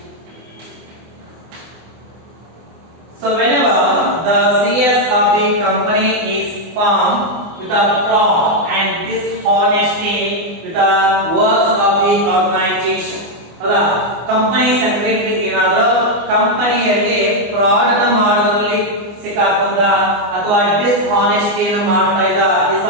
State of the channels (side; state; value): left; late; 24 ms